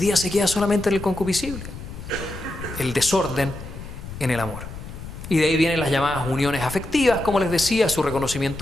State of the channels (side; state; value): left; noise; rumble, 11 dB below the sound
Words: se queda solamente en el concupiscible. El desorden en el amor. Y de ahí vienen las llamadas uniones afectivas, como les decía, su